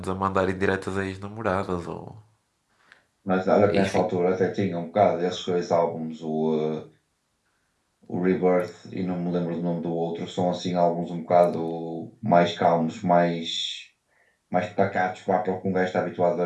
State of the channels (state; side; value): identical; both; correlation 1.00